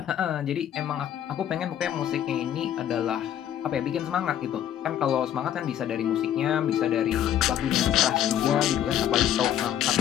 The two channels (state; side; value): quieter; right; 10.6 dB